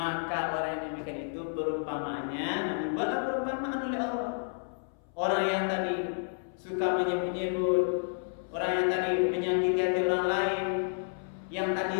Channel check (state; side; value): silent; right; 57 dB below the other